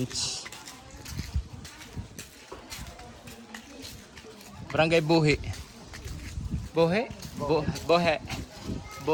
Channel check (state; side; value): identical; both; correlation 1.00